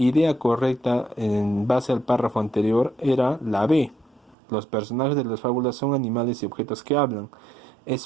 correcta en base al párrafo anterior era la B. Los personajes de las fábulas son animales y objetos que hablan.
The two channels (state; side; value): drops out; left; at 4.4 s